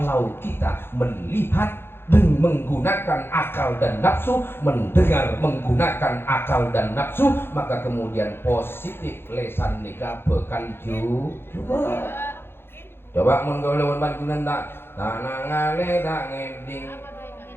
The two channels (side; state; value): right; late; 0.11 ms